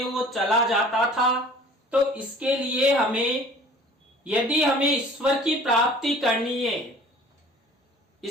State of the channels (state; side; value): normal; both; correlation 0.48